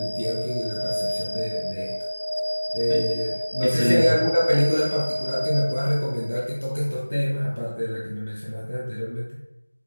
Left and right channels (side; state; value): both; inverted; correlation -1.00